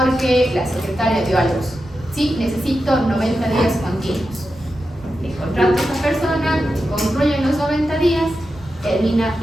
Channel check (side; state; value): both; normal; correlation 0.90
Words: la secretaria dio a luz. ¿Sí? Necesito 90 días continuos. Le contrato a esa persona, concluyen los 90 días, termina el